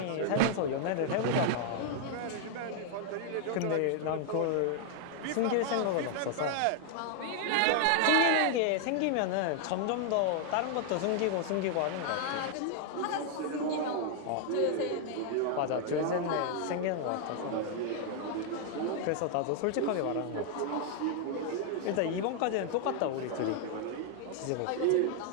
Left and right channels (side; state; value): both; different; correlation 0.00